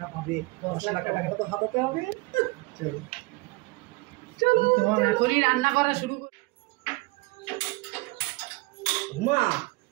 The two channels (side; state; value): left; quieter; 25.2 dB